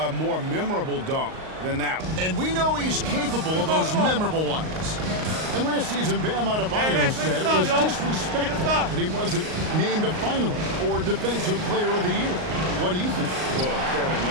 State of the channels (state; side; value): late; left; 38 ms